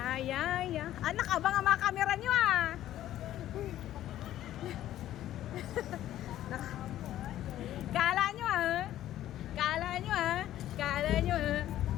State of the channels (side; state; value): right; quieter; 12.9 dB